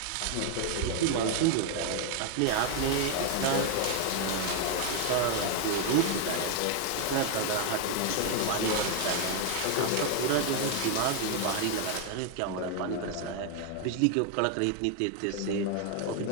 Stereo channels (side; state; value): both; different; correlation 0.00